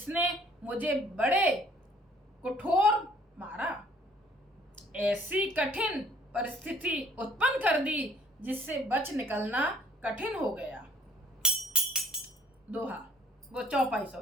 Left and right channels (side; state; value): both; normal; correlation 0.58